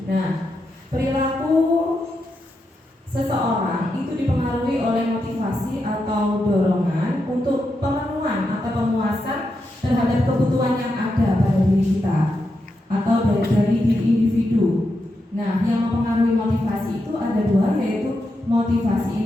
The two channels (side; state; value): both; normal; correlation 0.85